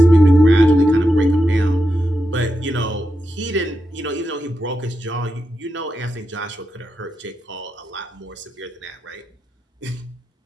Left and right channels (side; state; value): both; normal; correlation 0.87